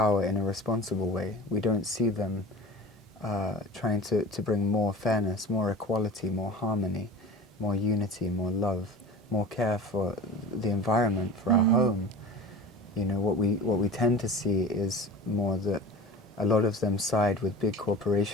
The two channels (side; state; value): both; normal; correlation 0.35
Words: in a responsible way. We don't see them trying to bring more fairness, more equality, more harmony, more unity, more love, more care for the environment, for our home. You know, what we tend to see is more that a lot of them side with big